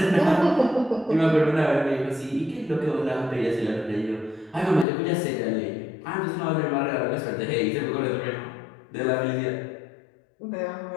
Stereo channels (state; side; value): drops out; right; at 4.9 s